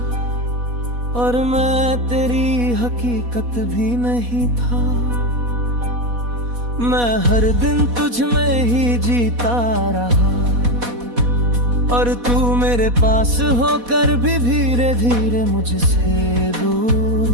और मैं तेरी हकीकत भी नहीं था। मैं हर दिन तुझ में ही जीता रहा और तू मेरे पास होकर भी धीरे धीरे मुझसे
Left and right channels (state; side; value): late; left; 4.1 ms